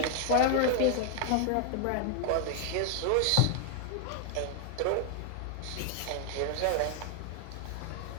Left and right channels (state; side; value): different; both; correlation 0.00